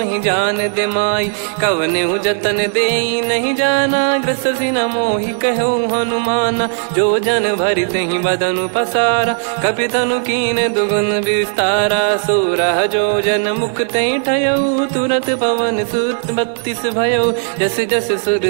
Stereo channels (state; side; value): silent; left; 69 dB below the other